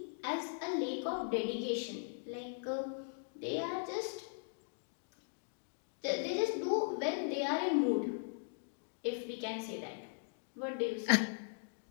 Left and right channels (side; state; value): right; silent; digital silence